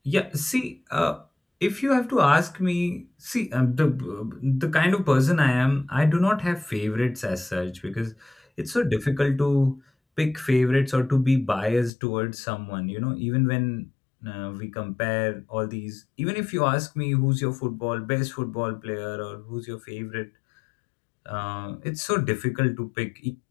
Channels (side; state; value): right; drops out; at 11.9 s